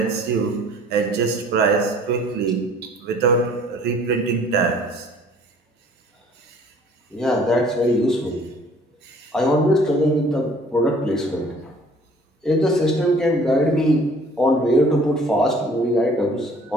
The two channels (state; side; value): normal; both; correlation 0.54